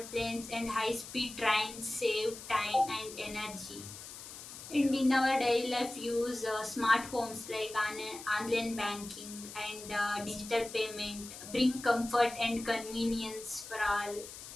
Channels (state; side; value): noise; left; hiss, 13 dB below the sound